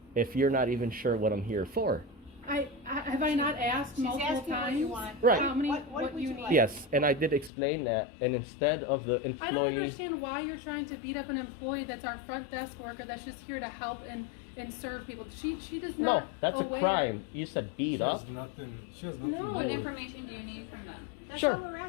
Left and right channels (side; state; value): right; drops out; at 7.5 s